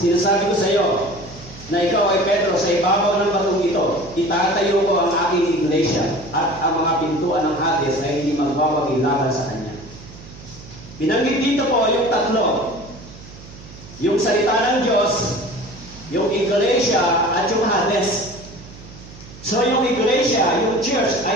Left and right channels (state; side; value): noise; right; hum, 18 dB below the sound